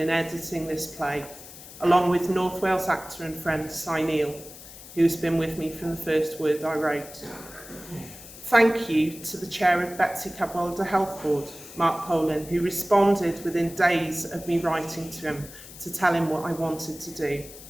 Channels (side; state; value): left; noise; hiss, 16 dB below the sound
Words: editing this play, along with North Wales actor and friend Cy Neal, who's been with me from the first word I wrote. Thank you to the chair of Betsy Cadwallader Health Board, Mark Poland, who responded within days of me writing to him to tell him what I wanted to do.